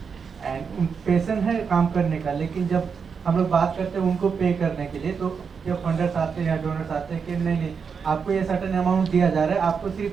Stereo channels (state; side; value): quieter; left; 6.0 dB